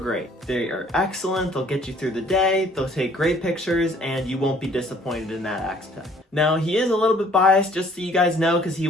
They are excellent, they'll get you through the day, they'll take great pictures, and you won't be disappointed in that aspect. Now, he is a little bit biased, just so you guys know, because he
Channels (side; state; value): both; normal; correlation 0.58